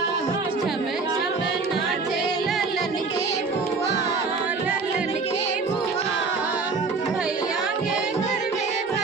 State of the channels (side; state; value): left; quieter; 4.4 dB